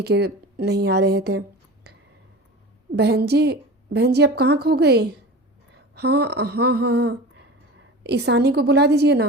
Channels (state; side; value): normal; both; correlation 0.33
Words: के नहीं आ रहे थे। बहन जी आप कहाँ खो गई? हाँ हाँ हाँ हाँ, ईशानी को बुला दीजिए